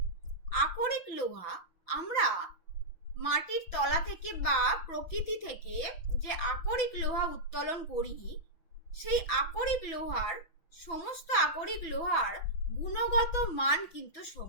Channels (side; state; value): right; late; 6.0 ms